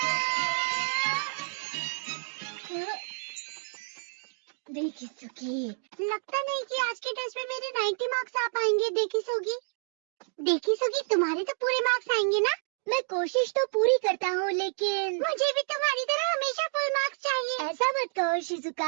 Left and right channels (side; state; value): left; silent; 58 dB below the other